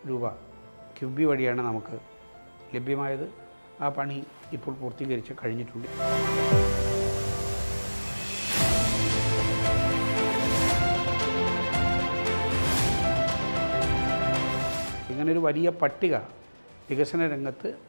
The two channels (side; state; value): both; inverted; correlation -1.00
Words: രൂപ കിഫ്ബി വഴിയാണ് നമുക്ക് ലഭ്യമായത്. ആ പണി ഇപ്പോൾ പൂർത്തീകരിച്ച് കഴിഞ്ഞിട്ടുണ്ട്. ഇങ്ങനൊരു വലിയ പട്ടിക വികസന രംഗത്ത്